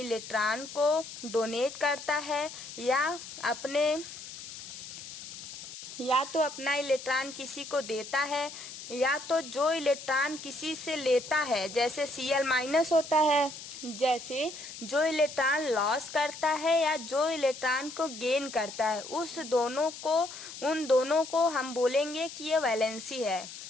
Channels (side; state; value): left; noise; hiss, 12 dB below the sound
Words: को डोनेट करता है या तो अपना इलेक्ट्रॉन किसी को देता है, या तो जो इलेक्ट्रॉन किसी से लेता है, जैसे Cl- होता है, जैसे जो इलेक्ट्रॉन लॉस करता है या जो इलेक्ट्रॉन को गेन करता है, उन दोनों को हम बोलेंगे कि ये वैलेंसी है।